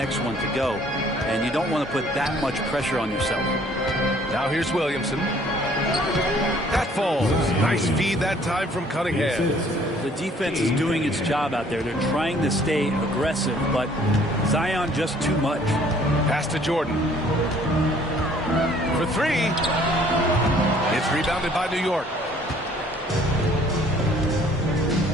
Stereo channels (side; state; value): both; normal; correlation 0.58